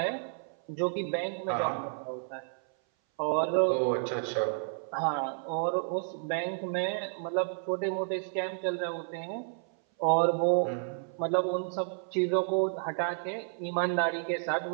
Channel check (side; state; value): left; silent; 57 dB below the other